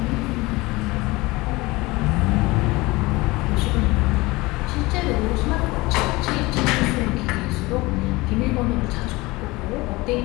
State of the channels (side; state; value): right; quieter; 21.8 dB